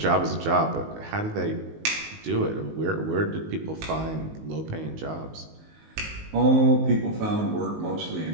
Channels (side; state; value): left; late; 19 ms